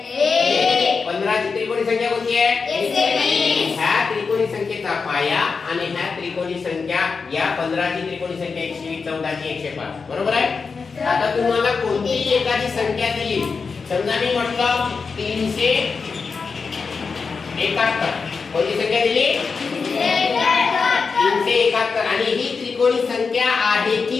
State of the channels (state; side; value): quieter; right; 5.0 dB